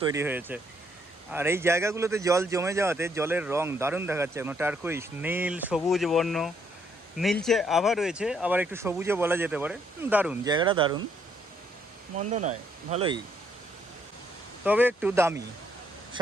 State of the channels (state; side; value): normal; both; correlation 0.71